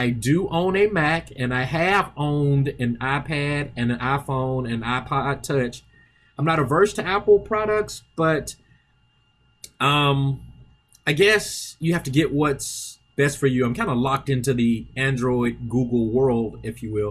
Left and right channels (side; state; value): both; identical; correlation 1.00